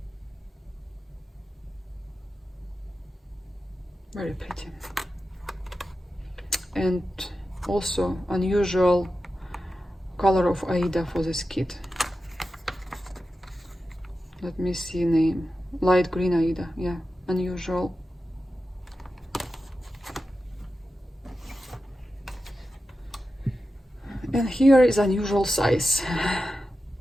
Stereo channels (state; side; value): normal; both; correlation 0.92